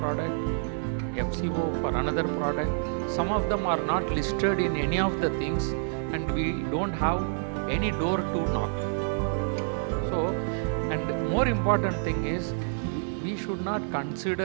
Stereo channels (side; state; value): left; silent; 59 dB below the other